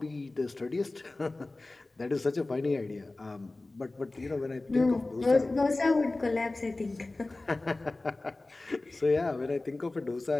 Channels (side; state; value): right; quieter; 3.0 dB